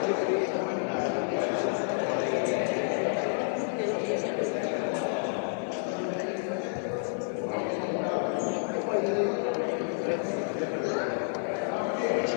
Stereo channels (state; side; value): silent; right; digital silence